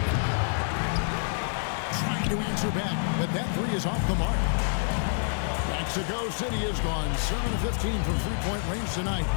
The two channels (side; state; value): right; silent; 57 dB below the other